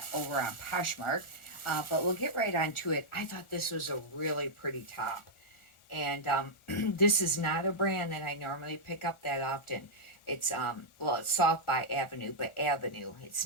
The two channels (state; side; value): late; right; 1.4 ms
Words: over on Poshmark. But we'll get right on to it. I thought this was a really pretty top. And this is not a brand that I normally pick up that often. It's well, it's Soft by Avenue, but Avenue. It's